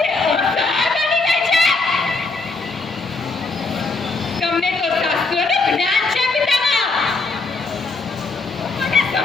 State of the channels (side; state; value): right; quieter; 3.8 dB